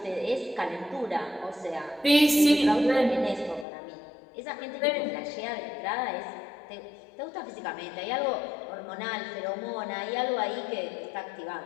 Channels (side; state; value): right; drops out; at 3.7 s